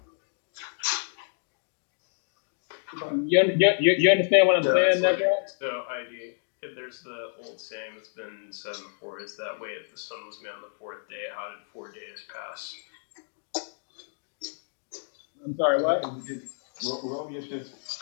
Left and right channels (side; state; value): right; silent; digital silence